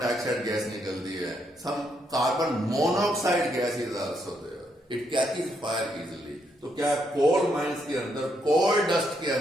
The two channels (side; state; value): both; normal; correlation 0.76